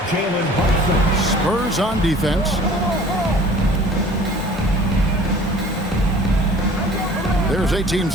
Jalen Brunson. Spurs on defense. There's 18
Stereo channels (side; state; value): both; normal; correlation 0.48